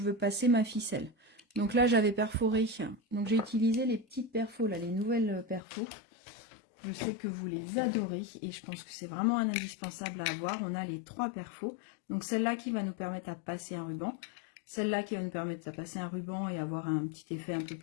veux passer ma ficelle. Donc là, j'avais perforé. Donc j'ai utilisé les petites perfos, là, les nouvelles perfos. Je sais que vous les adorez et je pense que c'est vraiment un indispensable à avoir. On a les 3 perfos. Donc celle-là qui va nous permettre à passer un ruban. Celle-là qui va nous permettre de passer un ruban et avoir un petit effet un peu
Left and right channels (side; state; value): right; drops out; at 5.6 s